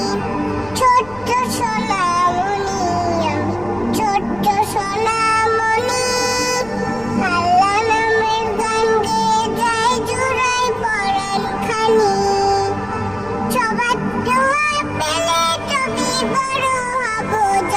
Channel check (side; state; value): left; noise; rumble, 20 dB below the sound